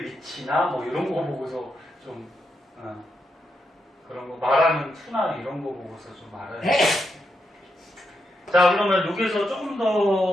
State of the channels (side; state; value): both; normal; correlation 0.83